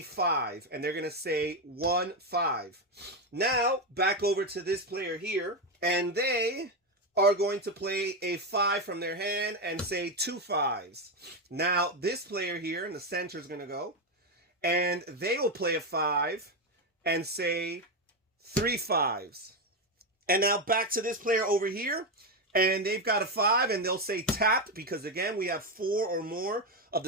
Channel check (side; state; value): both; normal; correlation 0.10